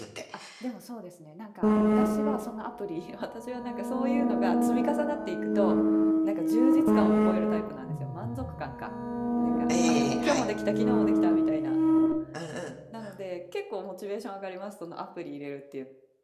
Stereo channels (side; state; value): both; identical; correlation 1.00